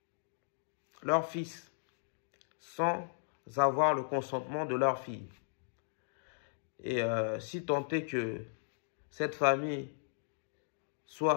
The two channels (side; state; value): right; silent; digital silence